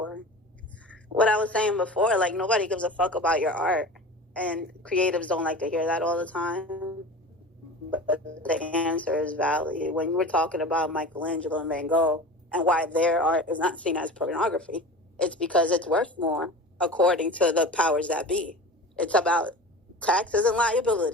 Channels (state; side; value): normal; both; correlation 0.35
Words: What I was saying before, like, nobody gives a fuck about your art. And creatives don't like to hear that all the time. But the answer is value. When you were talking about Michelangelo and Van Gogh and why their art is not seen as pornography, it's because it's worth more according to the powers that be. It's about taxes and